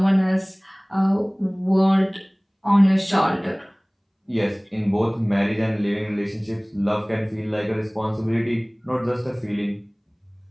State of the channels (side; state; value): both; identical; correlation 1.00